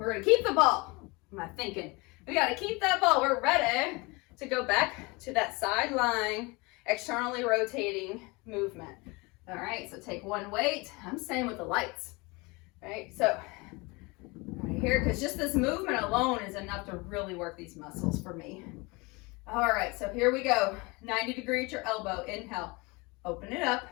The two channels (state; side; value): quieter; right; 26.1 dB